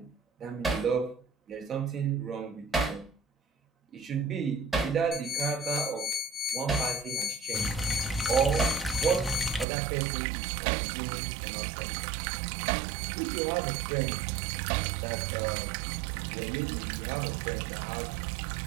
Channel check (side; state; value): left; drops out; at 9.7 s